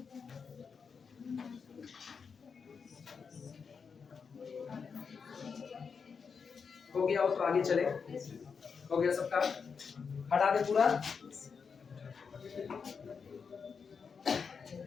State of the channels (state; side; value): quieter; right; 5.8 dB